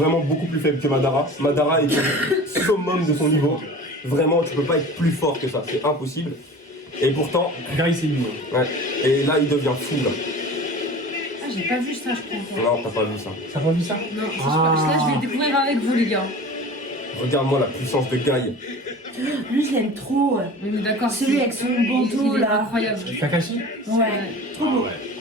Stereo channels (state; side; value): normal; both; correlation 0.38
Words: beaucoup plus faible que Madara. Madara est au summum de son niveau. Vraiment, tu peux pas être plus fort que ça, c'est impossible. Et pourtant, Guy, c'est lui. ouais. Et là, il devient fou là. Ah, j'ai pas vu ça, je crois encore. Non, t'as pas vu ça. T'as pas vu ça? Non, ça, là, je vais le découvrir avec vous, les gars. Regarde-moi la puissance de Guy. Lui, je l'aime trop. On est d'accord. Celui avec son bandeau, il est là. incroyable. Kakashi? Ouais, trop beau.